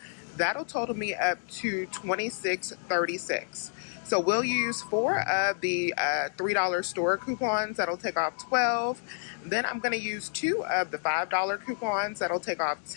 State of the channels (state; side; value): silent; right; digital silence